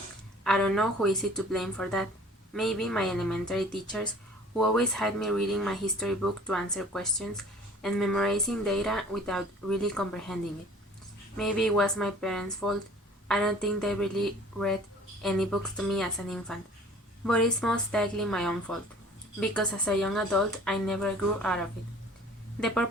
I don't know who is it to blame for that. Maybe my elementary teachers who always had me reading my history book to answer questions and memorizing data without really comprehending it. Maybe it was my parents' fault. I don't think they really read any books to me as an infant. But it's most likely my own fault, because as a young adult I never grew out of it. The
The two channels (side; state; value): both; normal; correlation 0.49